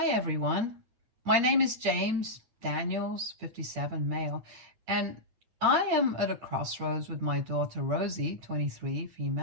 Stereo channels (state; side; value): late; left; 9.0 ms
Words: everyone. My name is James Daniels, 57, male, and I am at a crossroads with my daughter Rosie, 23,